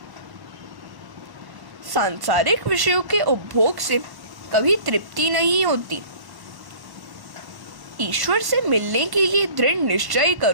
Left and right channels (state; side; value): late; left; 1.1 ms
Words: सांसारिक विषयों के उपभोग से कभी तृप्ति नहीं होती। ईश्वर से मिलने के लिए दृढ़ निश्चय